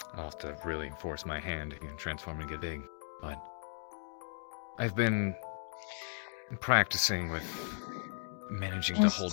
I'll have to really force my hand and transform and get big, but I've been practicing with managing Just to hold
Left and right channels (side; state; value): right; silent; digital silence